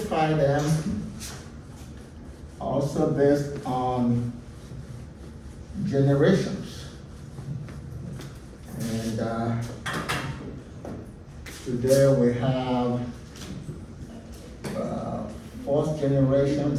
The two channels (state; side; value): identical; both; correlation 1.00